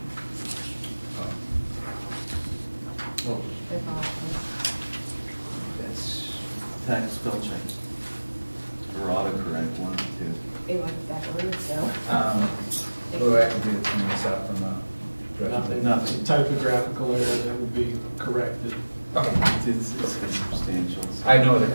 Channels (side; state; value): both; inverted; correlation -1.00